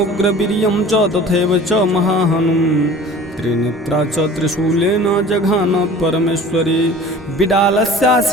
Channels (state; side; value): normal; both; correlation 0.43